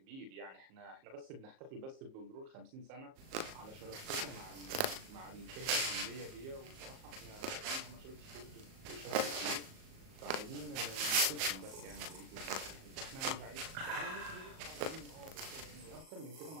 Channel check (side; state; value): left; late; 38 ms